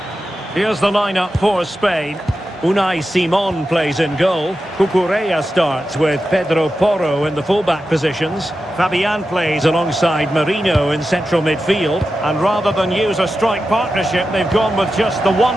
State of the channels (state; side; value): normal; both; correlation 0.91